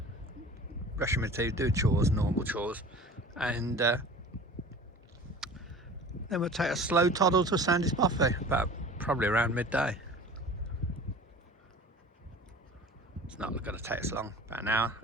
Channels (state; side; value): normal; both; correlation 0.41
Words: brushing my teeth, do chores, normal chores, and then we'll take a slow toddle to Sandwood Bothy, about probably around midday. It's not going to take us long, about an hour